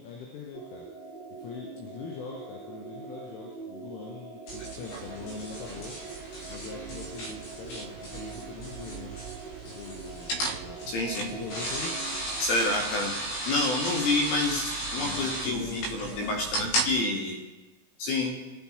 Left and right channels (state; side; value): late; right; 18 ms